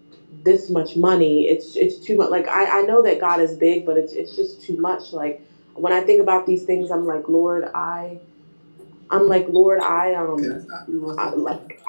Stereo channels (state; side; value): inverted; both; correlation -1.00